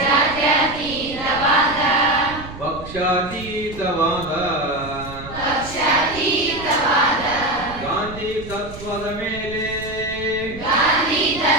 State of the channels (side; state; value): right; noise; rumble, 14 dB below the sound